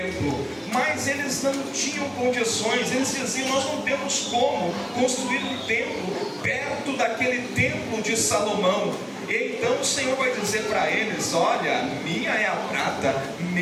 Mas eles não tinham condições, eles diziam: nós não temos como construir um templo perto daquele templo de Salomão. E então o Senhor vai dizer para eles: olha, minha é a prata,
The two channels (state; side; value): identical; both; correlation 1.00